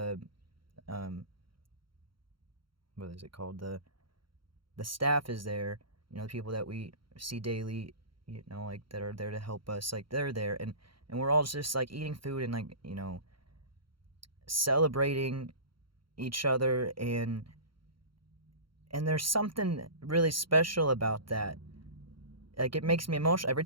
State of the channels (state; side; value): late; left; 0.73 ms